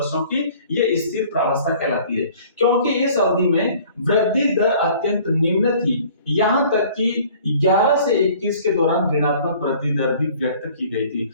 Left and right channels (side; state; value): both; inverted; correlation -0.52